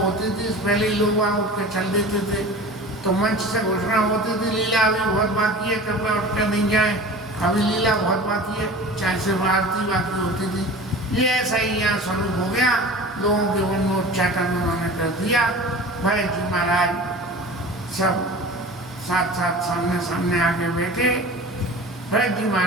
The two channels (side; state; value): both; normal; correlation 0.38